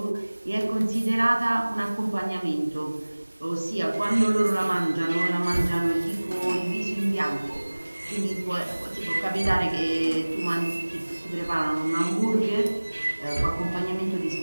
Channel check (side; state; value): both; inverted; correlation -1.00